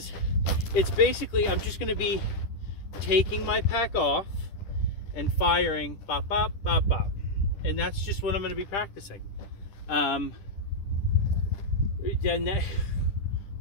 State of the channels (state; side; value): late; right; 10 ms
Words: it's basically, I'm just going to be taking my pack off and firing bop, bop, bop, bop. And that's just what I'm going to be practicing. Then